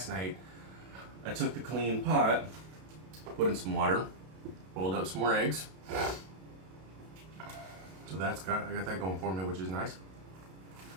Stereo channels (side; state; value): left; late; 32 ms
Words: night, I took the clean pot, put in some water, boiled up some more eggs. So I got that going for me, which is nice.